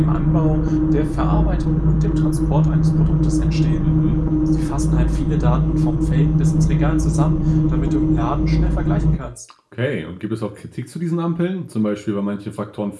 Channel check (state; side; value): identical; both; correlation 1.00